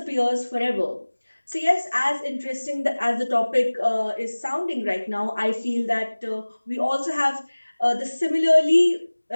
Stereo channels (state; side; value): inverted; both; correlation -1.00